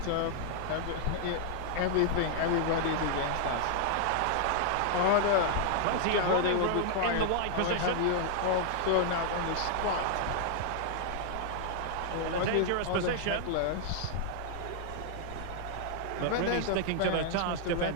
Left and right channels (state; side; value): different; both; correlation 0.00